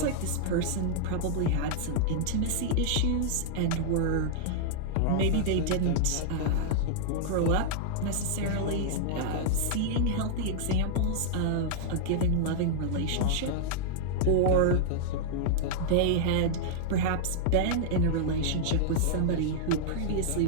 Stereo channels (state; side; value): different; both; correlation -0.01